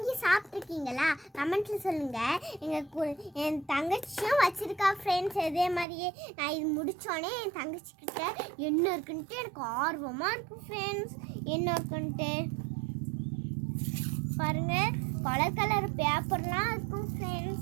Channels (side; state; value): left; drops out; at 5.9 s